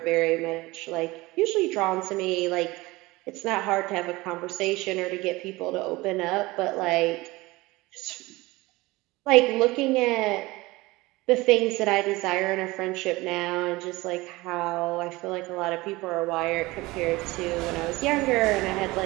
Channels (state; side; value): quieter; left; 21.0 dB